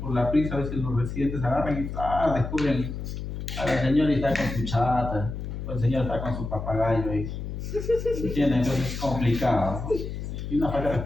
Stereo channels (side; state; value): left; noise; hum, 6 dB below the sound